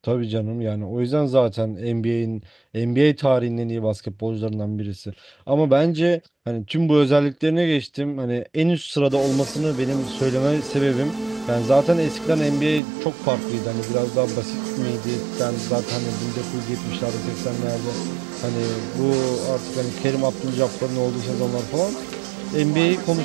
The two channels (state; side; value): drops out; left; at 12.8 s